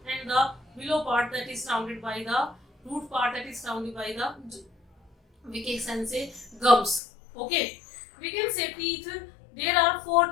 and the below part, that is surrounded by the root part, that is surrounded by the, we can say, gums. Okay, we can say teeth. There are four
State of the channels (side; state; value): right; drops out; at 7.0 s